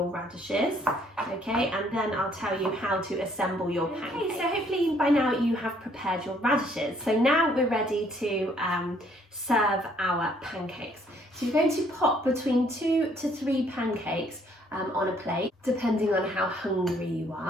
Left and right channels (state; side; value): normal; both; correlation 0.65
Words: radishes, okay? And then I'll tell you how to assemble your pancakes. Okay, so hopefully by now you have prepared your radishes. So now we're ready to serve our pancakes. So you're going to pop between 2 to 3 pancakes on a plate, depending on how hungry you